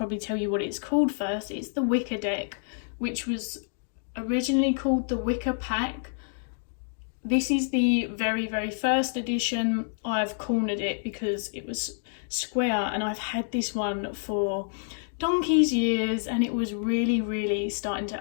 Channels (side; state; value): right; silent; digital silence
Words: tell you what it's called first. It's the Wicca deck, which was originally called the Wicca Pack. This is the very, very first edition. I've cornered it because it was square, and I've had this one for donkey's years, and it was really, really starting